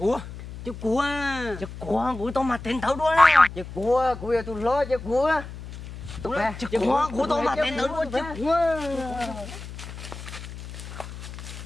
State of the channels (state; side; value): noise; left; hum, 12 dB below the sound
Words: Chiếc cua của tao mà tên thấu đuôi nè. Chiếc cua giờ tôi lo chiếc cua. Chiếc cua của tao mà tên thấu đuôi chiếc cua.